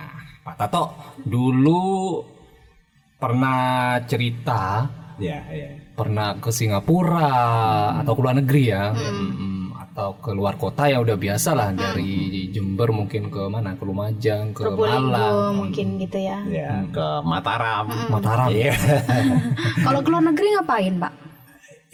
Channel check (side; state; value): both; identical; correlation 1.00